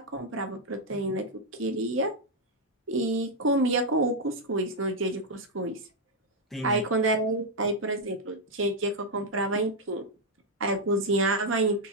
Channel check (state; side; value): normal; both; correlation -0.01